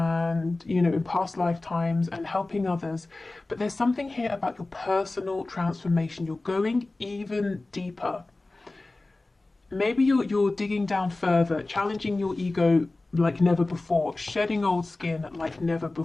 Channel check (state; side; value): quieter; right; 3.1 dB